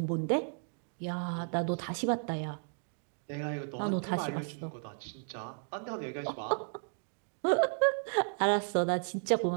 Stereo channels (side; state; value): left; silent; 55 dB below the other